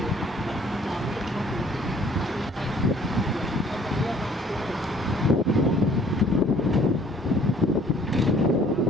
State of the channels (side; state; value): both; normal; correlation 0.57